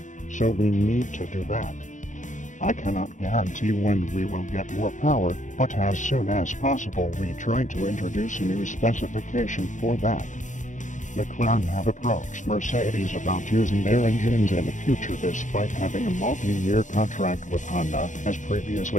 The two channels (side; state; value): right; late; 0.36 ms